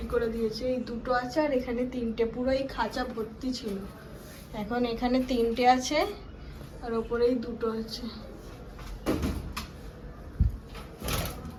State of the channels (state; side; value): identical; both; correlation 1.00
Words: করে দিয়েছে। এই দুটো আছে, আর এখানে তিনটে, পুরো এই খাঁচা ভর্তি ছিল। এখন এখানে তিনটে আছে, আর ওপরেই দুটো আছে।